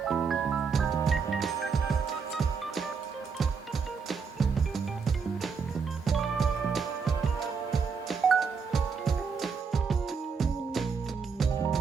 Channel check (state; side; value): quieter; left; 5.5 dB